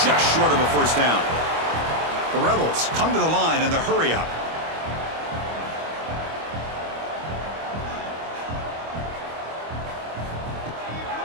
just short of a first down. The Rebels come to the line in the hurry-up.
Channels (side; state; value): left; late; 25 ms